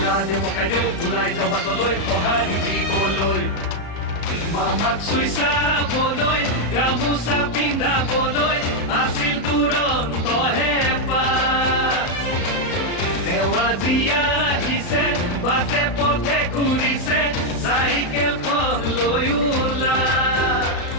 পকাই দিওঁ ওলাই যাওঁ বাটলৈ সঁহাৰি দিবলৈ মামাক চুই চাবলৈ গামোচা পিন্ধাবলৈ আছিল দুৰন্ত হেঁপাহ তেওঁ আজি আহিছে বাটে পথে ঘূৰিছে চাইকেলখন লৈ ওলা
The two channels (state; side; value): late; right; 35 ms